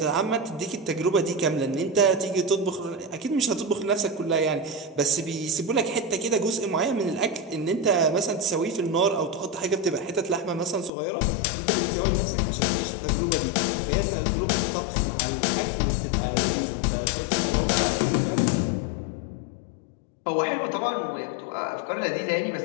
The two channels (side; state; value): right; drops out; at 10.9 s